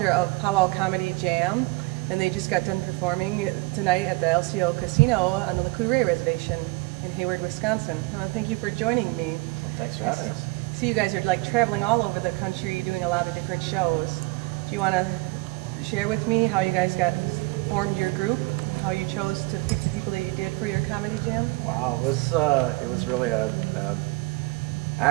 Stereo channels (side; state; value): left; quieter; 24.7 dB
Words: of Pow-wow Comedy Jam, and they just got done performing tonight at the LCO Casino on the Lakota Reservation in Hayward, Wisconsin. I want to thank you for joining me. Well, thanks for having us. See, you guys are like traveling all over the country doing a lot of different shows. Do you want to share with me how you guys formed your group? How you chose to pick the people that you did for your comedy jam? Wow, it was really a